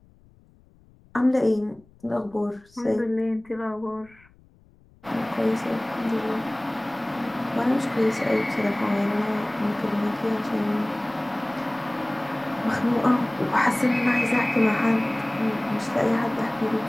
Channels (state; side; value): noise; left; rumble, 29 dB below the sound